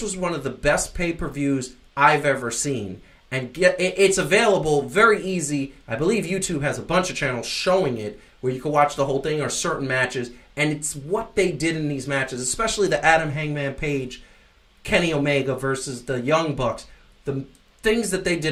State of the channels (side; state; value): both; identical; correlation 1.00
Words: one of the best pay-per-views I've ever seen. And it's available very easy. I believe YouTube has a bunch of channels showing it where you can watch the whole thing or certain matches. And it's what they did in these matches, especially the Adam Hangman Page, Kenny Omega versus the Young Bucks. The things that they